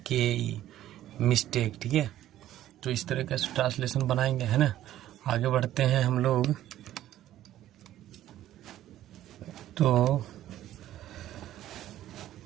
mistake, ठीक है। तो इस तरह का ट्रांसलेशन बनाएंगे, है ना। आगे बढ़ते हैं हम लोग। तो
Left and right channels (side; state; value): left; quieter; 13.0 dB